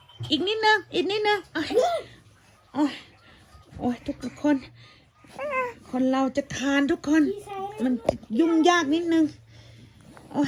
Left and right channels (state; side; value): identical; both; correlation 1.00